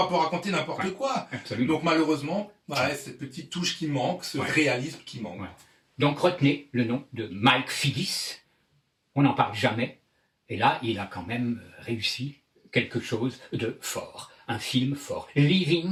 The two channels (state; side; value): identical; both; correlation 1.00